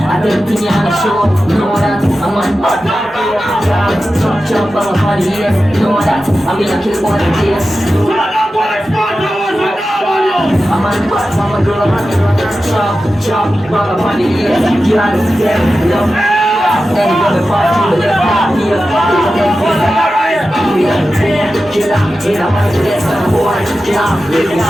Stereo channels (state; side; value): normal; both; correlation 0.93